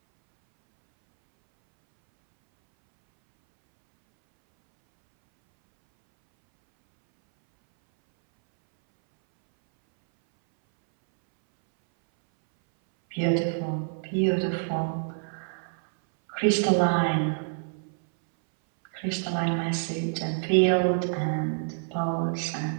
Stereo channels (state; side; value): silent; left; 60 dB below the other